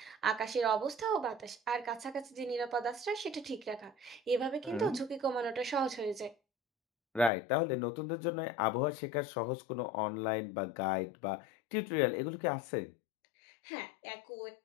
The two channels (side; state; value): right; drops out; at 7.3 s